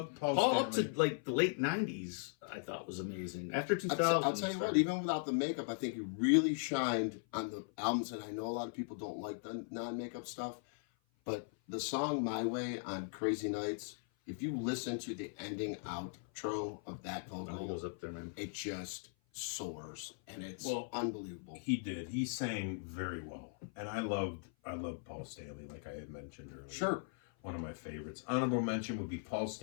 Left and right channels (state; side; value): silent; right; 52 dB below the other